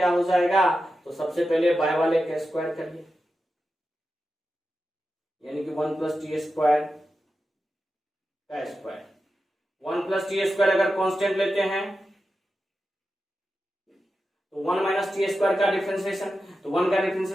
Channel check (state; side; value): normal; both; correlation 0.91